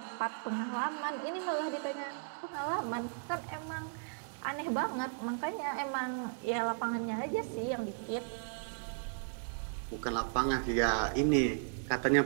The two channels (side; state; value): left; silent; digital silence